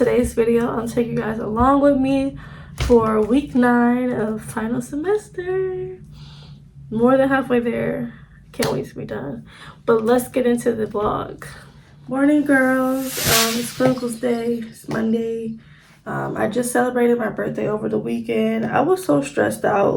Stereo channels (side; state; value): both; identical; correlation 1.00